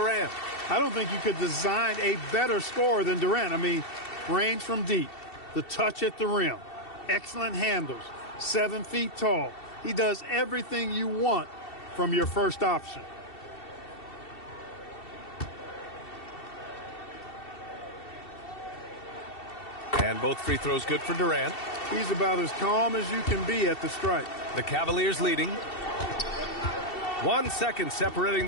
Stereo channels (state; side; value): late; right; 2.7 ms